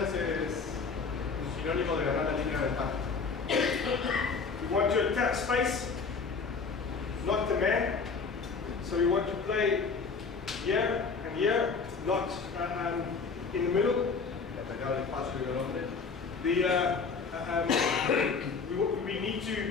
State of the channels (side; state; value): right; quieter; 5.0 dB